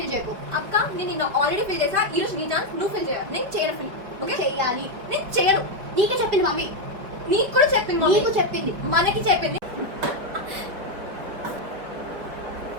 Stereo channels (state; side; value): late; left; 5.2 ms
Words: చేయకు. అక్క నేను నిన్న ఆల్రెడీ ఫిల్ చేసా. ఈ రోజు నీ ఛాన్స్, నువ్వు ఫిల్ చేయాలి. నేను చేయను ఫిల్. ఓకే చెయ్యాలి. నేను చేయను. నీకే చెప్పింది మమ్మీ. నీకు కూడా చెప్పింది మమ్మీ. నీకు చెప్పింది. మనకి చెప్పింది.